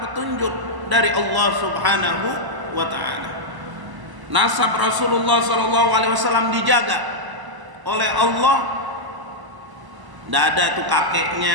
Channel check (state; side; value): late; left; 1.0 ms